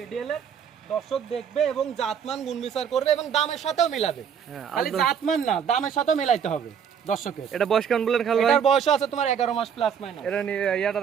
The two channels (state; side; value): quieter; left; 7.7 dB